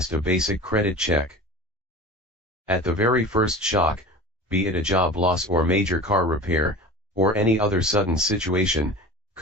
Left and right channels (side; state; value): both; normal; correlation 0.35